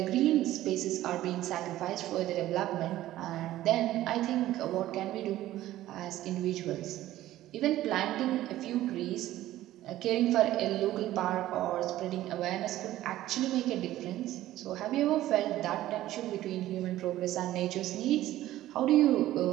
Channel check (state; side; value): quieter; left; 14.6 dB